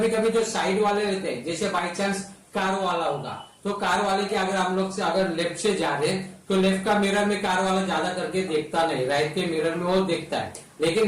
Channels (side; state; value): both; identical; correlation 1.00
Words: कभी जो साइड वाले रहते हैं, जैसे बाई चांस कार वाला होगा, तो कार वाले के अगर हम लोग से अगर लेफ्ट से जा रहे हैं, तो लेफ्ट का मिरर में कार वाला ज्यादा करके देखता नहीं, राइट के मिरर में वो देखता है।